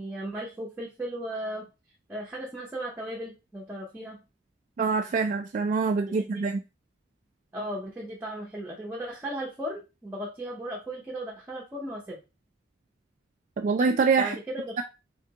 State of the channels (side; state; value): left; quieter; 3.5 dB